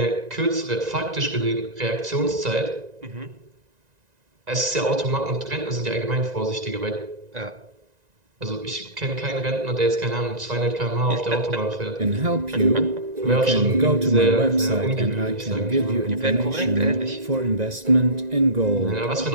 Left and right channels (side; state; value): left; late; 1.9 ms